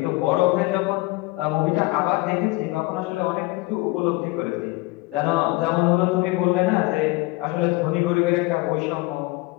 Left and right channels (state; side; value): quieter; right; 22.4 dB